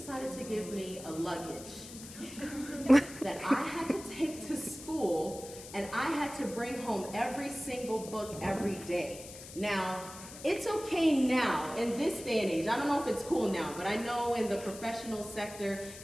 to give me a luggage that I had to take to school, and I had to bring home every single book every day. Now, it's okay now, in this day and age, I don't know if it's cool now, but I know in the professional sector,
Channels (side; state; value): left; noise; hiss, 14 dB below the sound